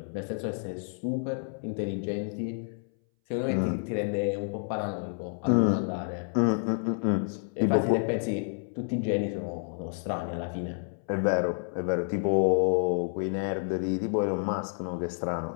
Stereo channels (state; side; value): silent; right; 58 dB below the other